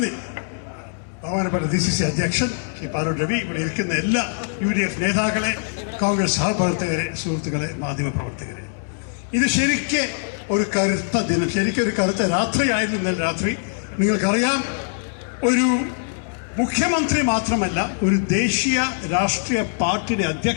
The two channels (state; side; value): silent; right; 64 dB below the other